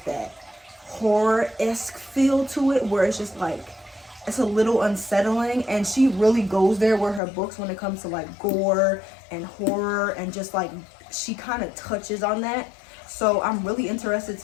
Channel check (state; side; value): drops out; right; at 7.2 s